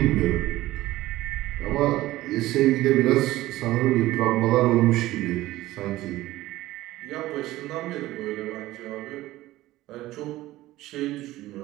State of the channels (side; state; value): left; quieter; 16.6 dB